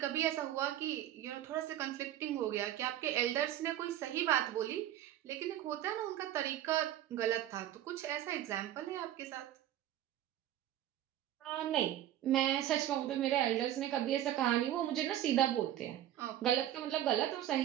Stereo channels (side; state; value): left; quieter; 12.4 dB